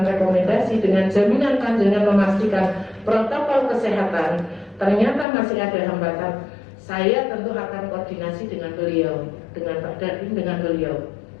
rekomendasi dengan jaminan panjenengan memastikan protokol kesehatan, ternyata masih ada hambatan, saya tentu akan koordinasi dengan beliau, dengan Pak Dandim, dengan beliau.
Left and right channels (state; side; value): drops out; right; at 5.2 s